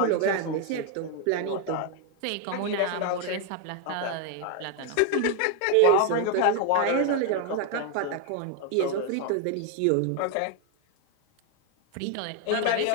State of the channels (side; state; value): both; different; correlation 0.01